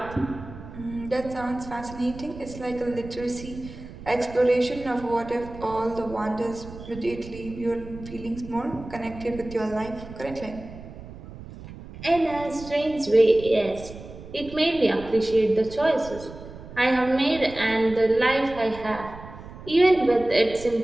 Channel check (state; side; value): noise; right; rumble, 14 dB below the sound